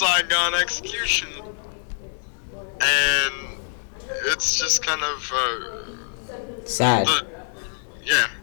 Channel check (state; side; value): silent; right; 62 dB below the other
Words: execution. And it's just kind of, Sad.